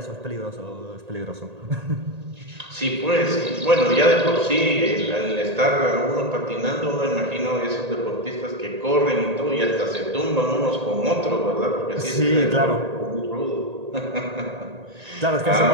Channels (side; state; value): left; late; 1.8 ms